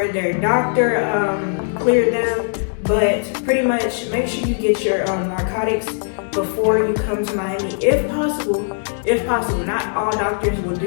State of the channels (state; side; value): silent; right; digital silence